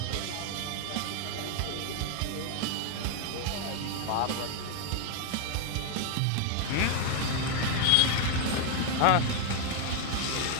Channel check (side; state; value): both; different; correlation 0.00